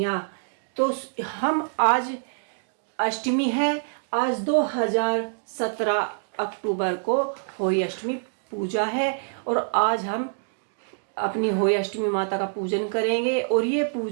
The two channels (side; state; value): left; silent; digital silence